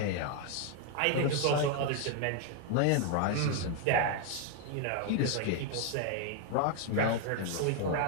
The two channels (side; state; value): both; different; correlation 0.01